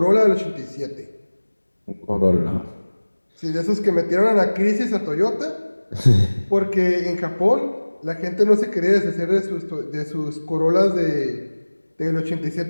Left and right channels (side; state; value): both; inverted; correlation -1.00